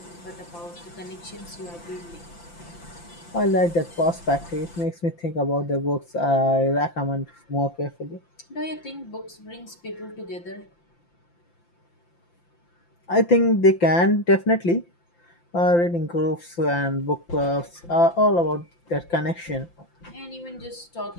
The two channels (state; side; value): late; right; 5.8 ms